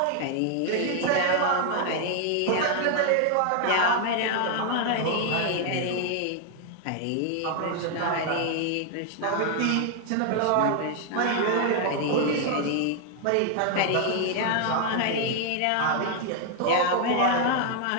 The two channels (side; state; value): both; different; correlation 0.00